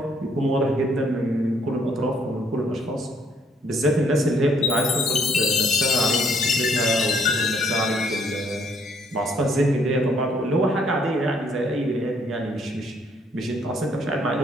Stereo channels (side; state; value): both; normal; correlation 0.67